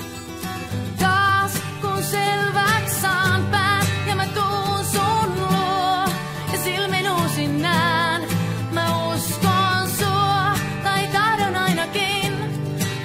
Taas kun selväks saan pään ja mä tuun sun luo ja silmin uusin näen, mä uskon sua tai tahdon ainakin,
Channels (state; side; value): identical; both; correlation 1.00